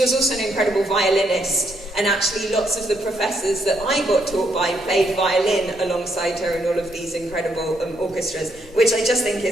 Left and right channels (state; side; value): normal; both; correlation 0.75